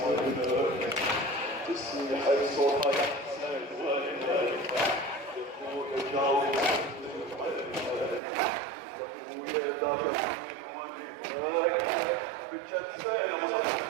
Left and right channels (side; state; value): left; drops out; at 8.2 s